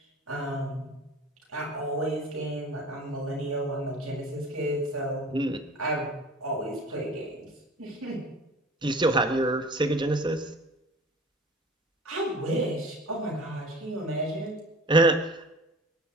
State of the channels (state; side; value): normal; both; correlation 0.42